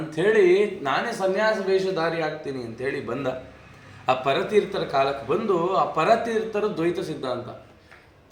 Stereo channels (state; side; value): identical; both; correlation 1.00